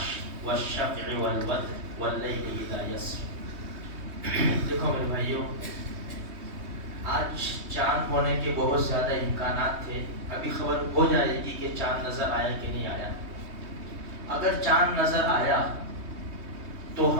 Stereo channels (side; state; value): left; late; 3.2 ms